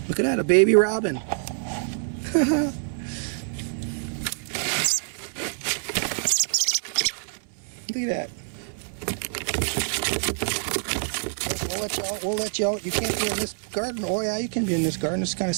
Look at that, a baby robin. Look at that. We'll let you out. You can't be in this garden. Oh yeah, you can be in this garden. It's kind of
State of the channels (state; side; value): silent; left; digital silence